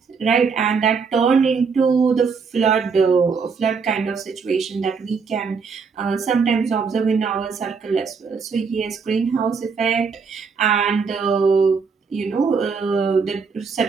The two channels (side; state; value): left; quieter; 5.4 dB